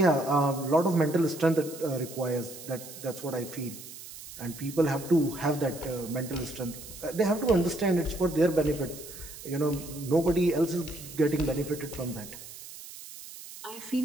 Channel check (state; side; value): noise; right; hiss, 14 dB below the sound